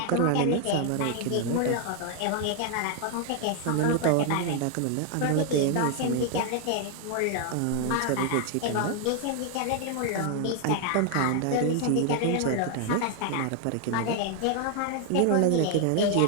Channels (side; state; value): both; different; correlation 0.00